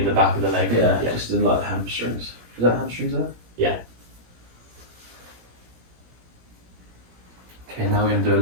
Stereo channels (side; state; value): left; late; 17 ms